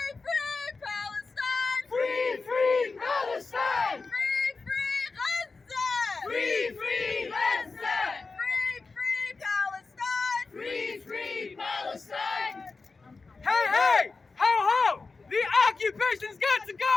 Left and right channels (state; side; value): quieter; right; 4.1 dB